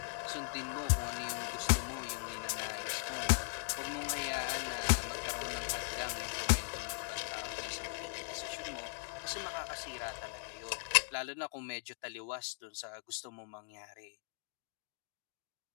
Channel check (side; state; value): right; silent; 52 dB below the other